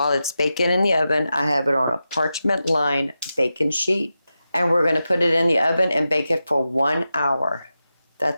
it's baking in the oven, I have it on a parchment-lined baking sheet. And we're going to put it in the oven and bake it for 1 hour.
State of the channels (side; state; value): both; inverted; correlation -0.91